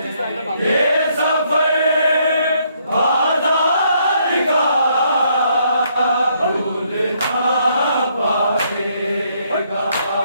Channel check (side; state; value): both; inverted; correlation -0.71